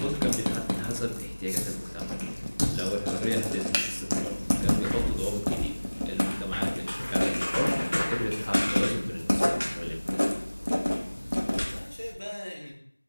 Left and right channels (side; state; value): both; inverted; correlation -1.00